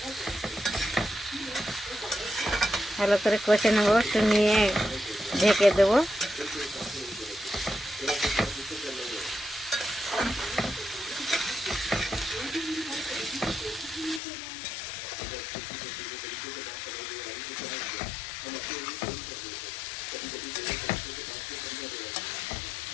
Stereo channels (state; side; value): drops out; right; at 14.2 s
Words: ভালো করে কষে নেব, একটু নিয়ে ঢেকে দেবো।